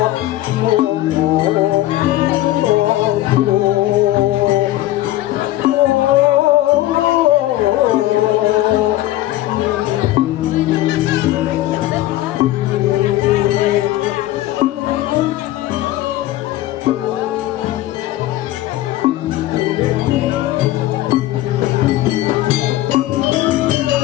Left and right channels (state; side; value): quieter; right; 15.3 dB